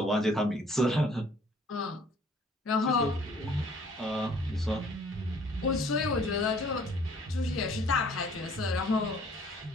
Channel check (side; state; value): both; normal; correlation 0.57